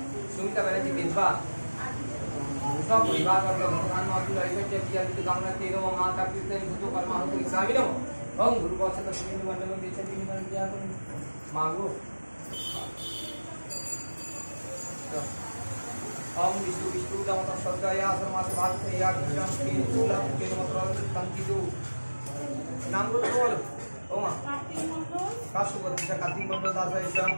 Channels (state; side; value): inverted; both; correlation -1.00